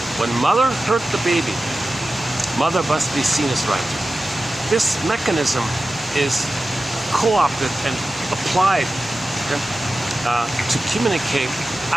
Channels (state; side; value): normal; both; correlation 0.94